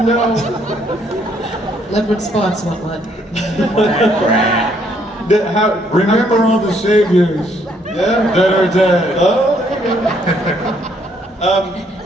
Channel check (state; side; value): normal; both; correlation 0.69